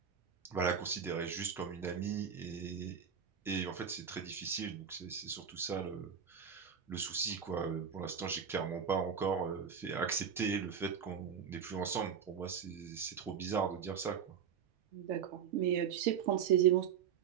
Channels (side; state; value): left; quieter; 7.5 dB